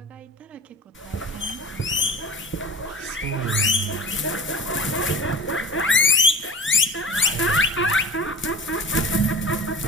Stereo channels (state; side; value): normal; both; correlation 0.37